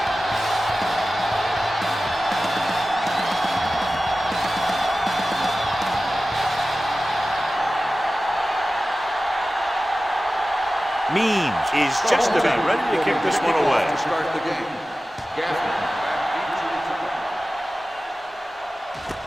Means is just about ready to kick this one away. To start the game.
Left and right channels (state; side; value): normal; both; correlation 0.95